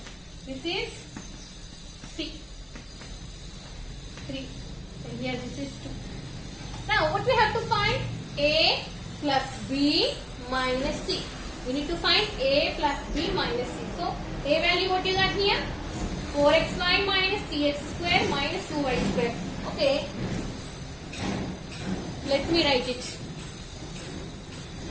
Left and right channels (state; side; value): identical; both; correlation 1.00